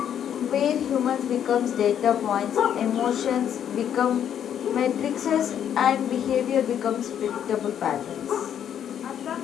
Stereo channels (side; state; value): right; quieter; 9.4 dB